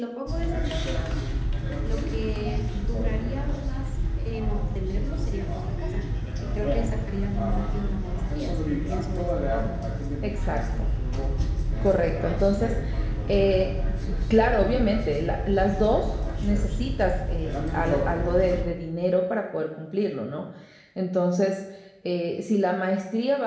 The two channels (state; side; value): identical; both; correlation 1.00